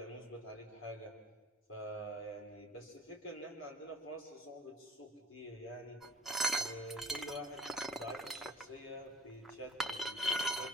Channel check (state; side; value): normal; both; correlation 0.49